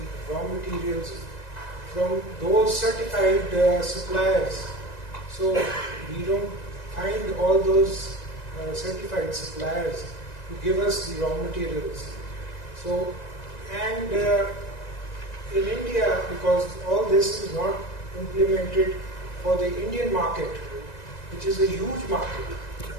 raw materials from those certified suppliers. So we don't find all those certified suppliers to give us the raw materials. So, and in India, because all this is not implemented for the Indian market, which is a huge market,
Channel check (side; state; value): right; late; 1.9 ms